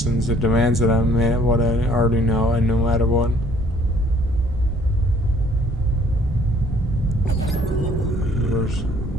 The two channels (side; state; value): both; normal; correlation 0.59